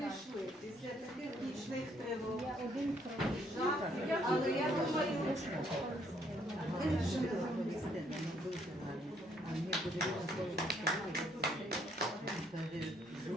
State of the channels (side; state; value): both; normal; correlation 0.68